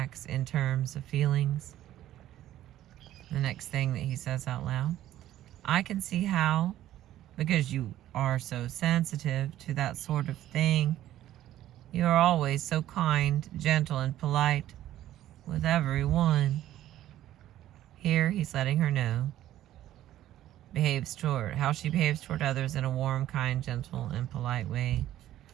in terms of feelings. The next thing that he says out loud, I can see how, because you are so sensitive to that sort of thing, you are always so kind, gentle, and polite with everyone. Here he's letting her know how she behaves toward others in a warm, kind, gentle, and polite way.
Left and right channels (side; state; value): left; quieter; 13.1 dB